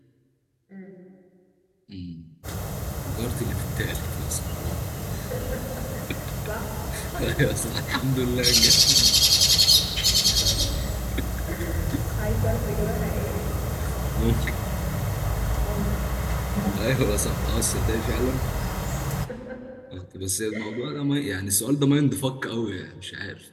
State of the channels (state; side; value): identical; both; correlation 1.00